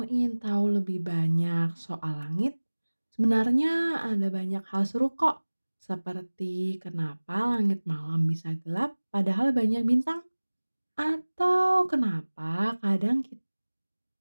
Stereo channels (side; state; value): both; inverted; correlation -1.00